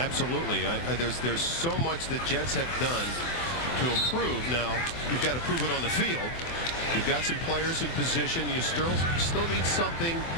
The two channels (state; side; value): late; right; 24 ms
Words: There's so much that Jets have done to improve. Now, you've got to prove it on the field. You've got some players in position. You still need something